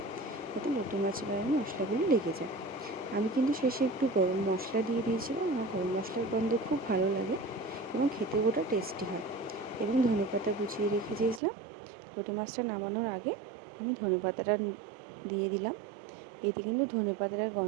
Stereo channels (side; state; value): left; drops out; at 11.4 s